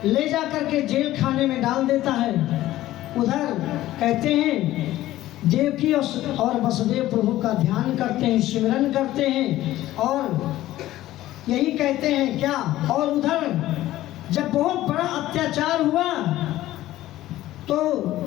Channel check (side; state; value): right; quieter; 15.0 dB